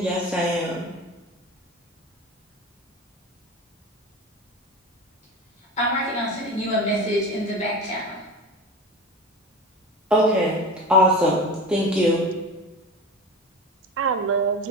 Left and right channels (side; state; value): both; normal; correlation 0.30